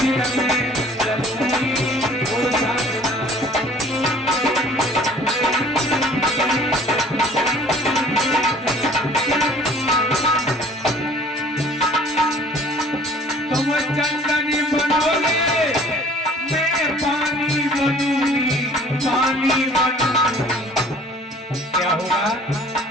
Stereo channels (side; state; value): both; normal; correlation 0.52